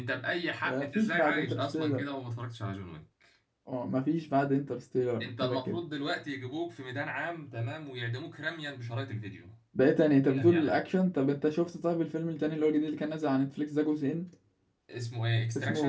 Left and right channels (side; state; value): both; identical; correlation 1.00